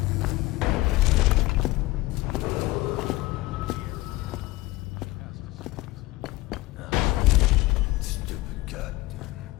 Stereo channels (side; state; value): right; quieter; 19.3 dB